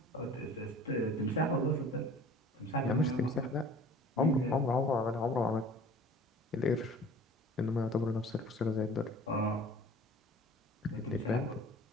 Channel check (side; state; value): both; normal; correlation 0.46